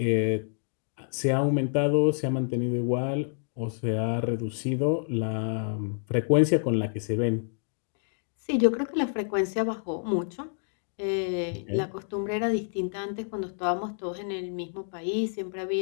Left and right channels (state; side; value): silent; right; digital silence